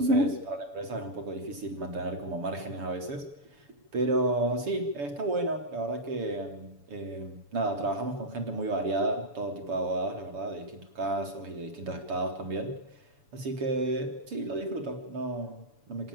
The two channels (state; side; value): late; left; 7.0 ms